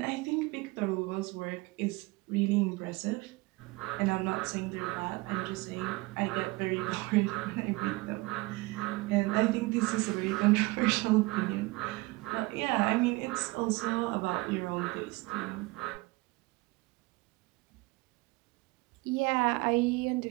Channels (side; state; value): left; quieter; 23.3 dB